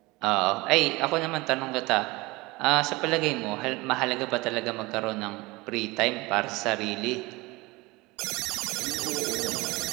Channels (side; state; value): left; quieter; 22.7 dB